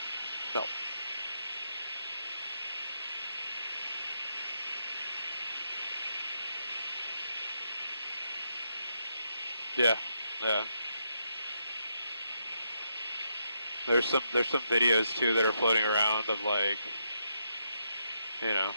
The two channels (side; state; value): both; inverted; correlation -0.79